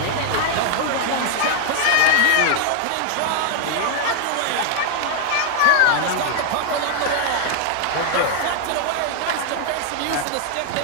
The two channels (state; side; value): different; both; correlation 0.00